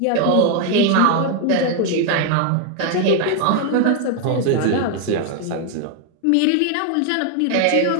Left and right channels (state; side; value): different; both; correlation 0.00